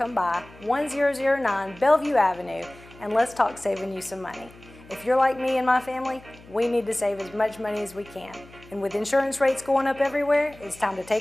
by 1009 Bellevue Avenue and let's talk saving you some money. If you're like me and my family, we need to save as much money as we can. And with insurance rates going up everywhere, it's time to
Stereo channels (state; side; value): noise; left; hum, 22 dB below the sound